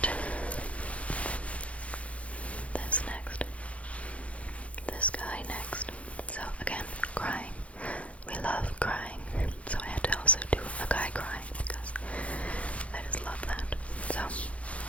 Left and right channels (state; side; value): late; right; 0.064 ms